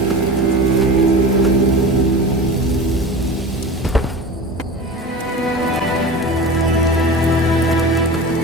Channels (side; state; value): both; normal; correlation 0.32